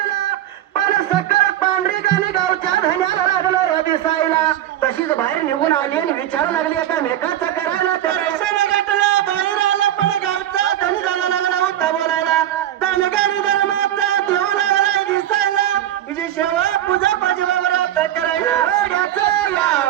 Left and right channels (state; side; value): quieter; left; 12.1 dB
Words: पण सकल पांढरीकाने गावच्या धन्याला लागलं या दिसायला तशीच बाहेर निघून आली आणि विचारू लागली आता मेकाचं करायला दर्शन घेतलं बाहेर आलं पण गावचा धनी झाला लागला होता बोलायला धनगारी धर्माचा देव लागला दिसायला तिची सेवा पूजा पजवावर करायला वेड्याचं या